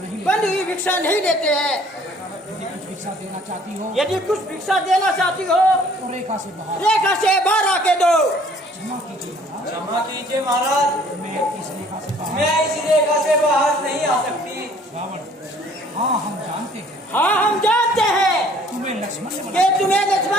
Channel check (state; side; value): normal; both; correlation 0.57